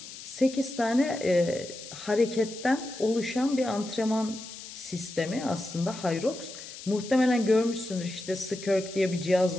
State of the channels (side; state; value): left; noise; hiss, 13 dB below the sound